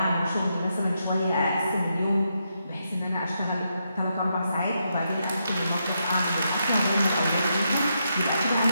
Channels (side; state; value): both; inverted; correlation -0.82